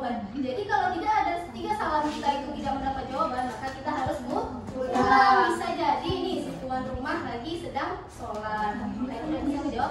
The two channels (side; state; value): both; identical; correlation 1.00